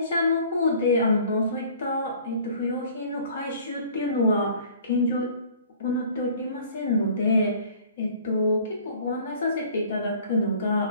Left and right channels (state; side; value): inverted; both; correlation -0.51